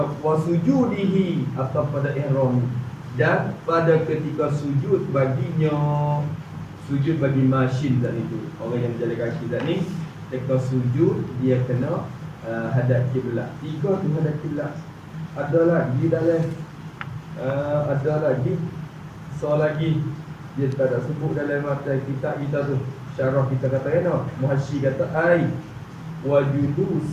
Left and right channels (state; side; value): identical; both; correlation 1.00